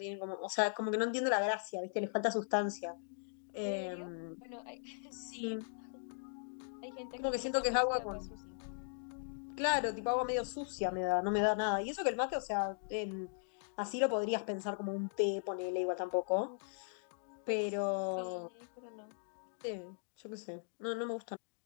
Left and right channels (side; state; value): right; silent; digital silence